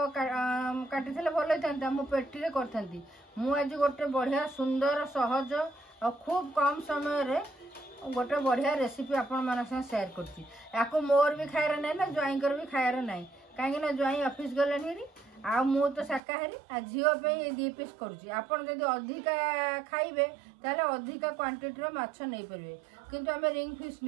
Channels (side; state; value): left; drops out; at 16.2 s